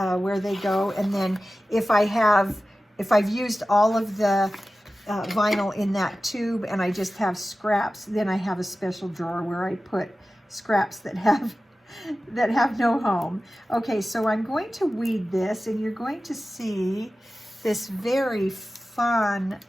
they go. And then if I've used all of the vinyl in that tube and I just have scraps, then I have a special drawer where I put scraps that have no home. Okay, so I'm going to weed this, and you're going to see this very fun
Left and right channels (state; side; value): normal; both; correlation 0.95